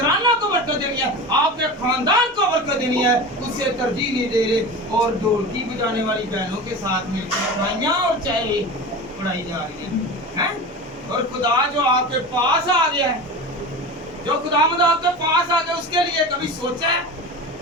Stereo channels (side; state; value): both; normal; correlation 0.29